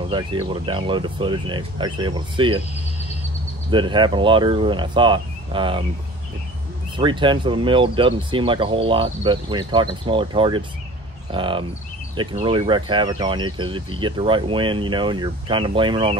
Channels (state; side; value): normal; both; correlation 0.43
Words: I was actually able to download the footage and actually able to see it that it happened a lot earlier than I thought. 3/10 of a mil doesn't seem like a whole lot, but when you're talking smaller targets, it can really wreak havoc on you, because if you get the right wind, and you're kind of blaming on